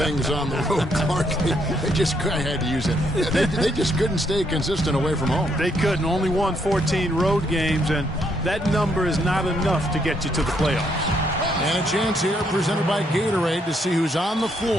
on the road, Clark. I had to use it. They just couldn't stay consistent away from home. They couldn't. Only won 14 road games, and that number is not enough to get you to the playoffs. And a chance here presented by Gatorade to see who's on the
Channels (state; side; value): normal; both; correlation 0.73